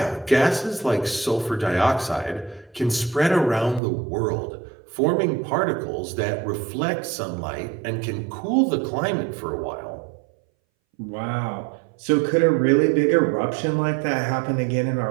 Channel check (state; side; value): drops out; left; at 3.8 s